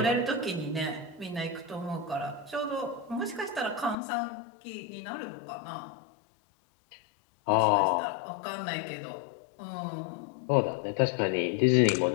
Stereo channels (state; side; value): drops out; right; at 4.0 s